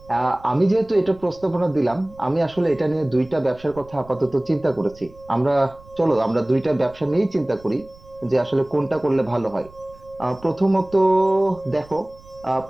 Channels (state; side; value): noise; right; rumble, 23 dB below the sound